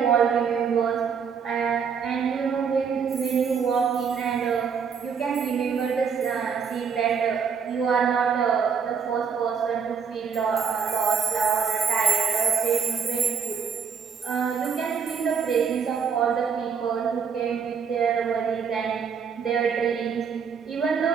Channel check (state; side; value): quieter; left; 6.4 dB